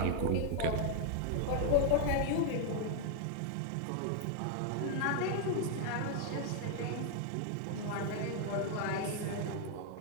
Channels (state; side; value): different; both; correlation 0.00